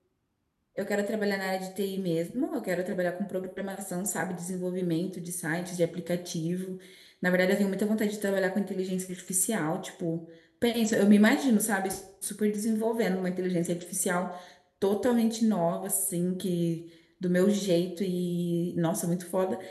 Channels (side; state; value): both; identical; correlation 1.00